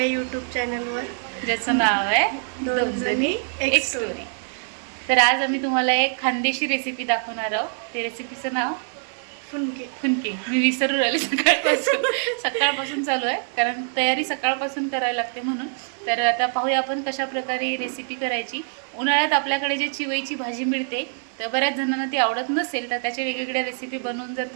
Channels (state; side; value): silent; left; 62 dB below the other